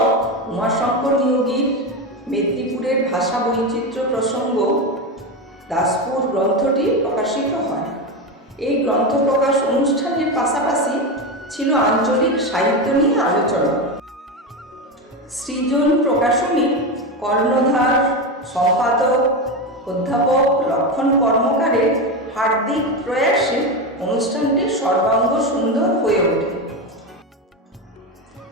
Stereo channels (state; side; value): normal; both; correlation 0.17